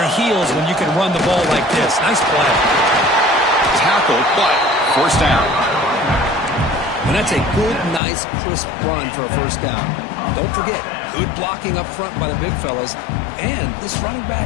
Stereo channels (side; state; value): right; drops out; at 8.0 s